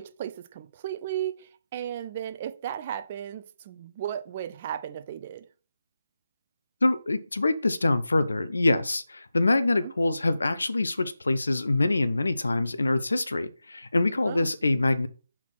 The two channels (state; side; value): inverted; both; correlation -0.92